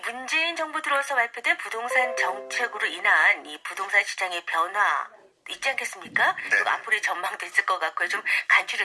정부 들어서 발표된 부동산 정책으로 인한 이 부동산 시장의 변화 있지 않겠습니까? 네. 그리고 앞으로의 전망도 있을 것 같고요. 좀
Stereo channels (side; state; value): both; identical; correlation 1.00